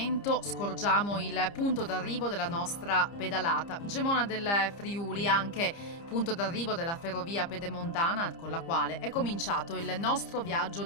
scorgiamo il punto d'arrivo della nostra pedalata. Gemona del Friuli, anche punto d'arrivo della ferrovia pedemontana con la quale è cominciato il nostro viaggio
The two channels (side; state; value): right; late; 30 ms